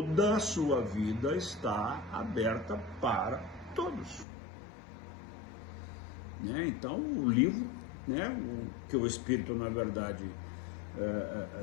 a sua vida está aberta para todos. Né? Então, o livro, né, que o espírito, na verdade,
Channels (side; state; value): right; drops out; at 4.2 s